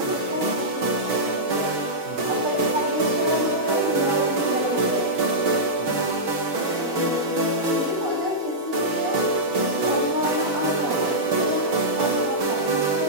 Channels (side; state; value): left; late; 6.2 ms